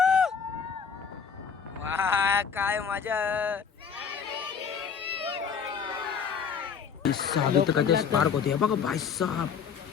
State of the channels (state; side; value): quieter; right; 6.6 dB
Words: वा काय मजा. इथं कधी स्पार्क होते हे बघा भाई साहब,